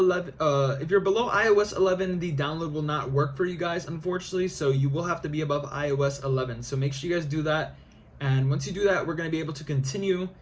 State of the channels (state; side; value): identical; both; correlation 1.00